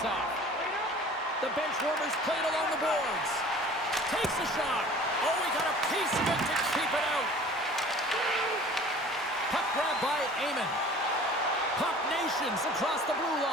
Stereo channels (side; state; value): both; normal; correlation 0.46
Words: The bench warmers played along the boards. Takes a shot. Oh, he got a piece of it to keep it out. Puck grab by Amon. Puck Nations across the blue